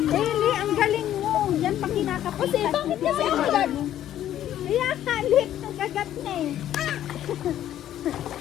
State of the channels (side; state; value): right; quieter; 11.8 dB